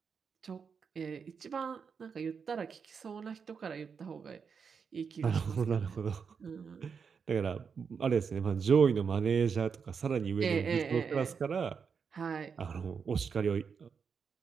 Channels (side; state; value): left; quieter; 6.1 dB